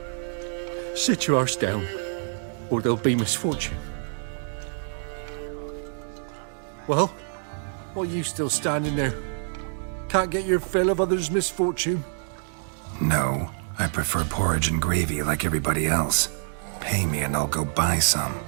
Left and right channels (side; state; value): left; silent; digital silence